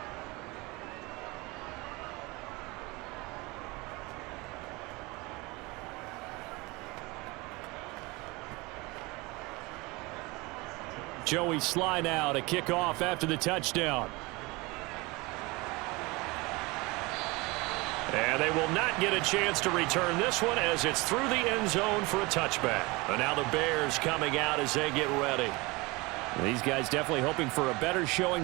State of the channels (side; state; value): left; quieter; 24.1 dB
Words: Joey Sly now to kick off after the touchdown. And they will not get a chance to return this one, as it's through the end zone for a touchback. And now the Bears coming out as they get ready. These guys definitely hoping for a better showing